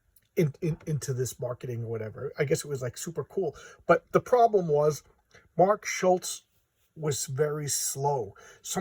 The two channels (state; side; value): identical; both; correlation 1.00